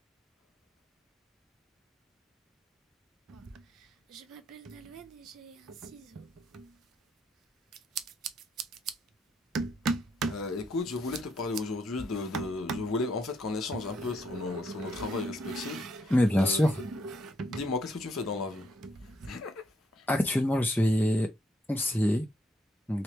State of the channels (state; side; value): normal; both; correlation 0.75